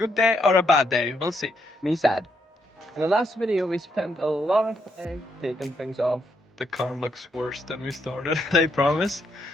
day or a bad day. We'll see. Me sad. In the last video, we spent a lot of time taking things off. The car looks worse than we started, I promise.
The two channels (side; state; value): both; normal; correlation 0.76